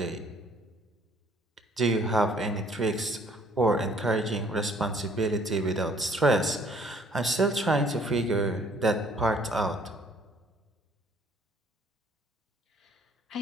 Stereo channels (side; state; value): both; normal; correlation 0.59